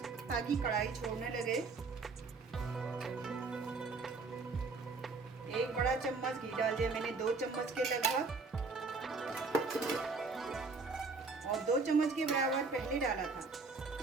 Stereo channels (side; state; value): left; quieter; 4.1 dB